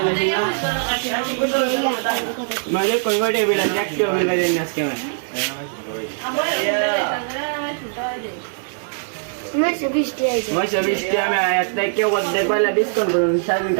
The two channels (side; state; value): left; silent; digital silence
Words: नहीं मुझे कोई बिल एक्टिव बिल देना इसके में मैं सबिष्टी है में आया था कि वो देख वाला डिस्काउंट करूँ शायद